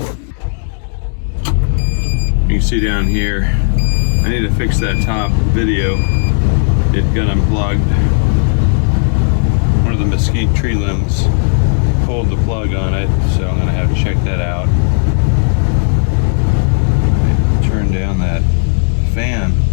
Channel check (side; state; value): right; silent; digital silence